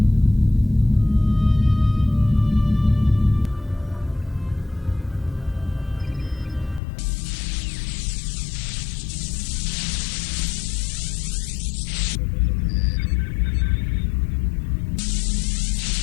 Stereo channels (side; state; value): right; drops out; at 6.8 s